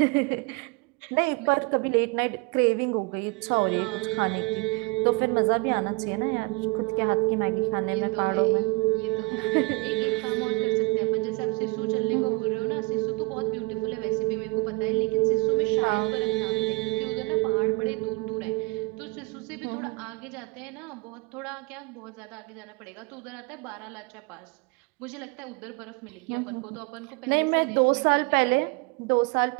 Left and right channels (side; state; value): left; quieter; 26.3 dB